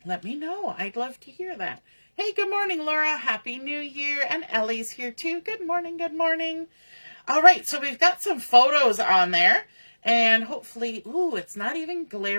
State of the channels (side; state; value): both; inverted; correlation -1.00